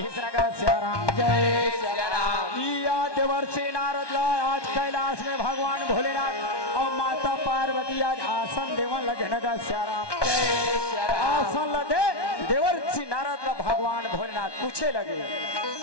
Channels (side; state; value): right; late; 1.2 ms